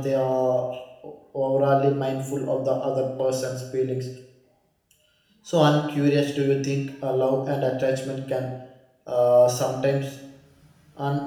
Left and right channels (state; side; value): identical; both; correlation 1.00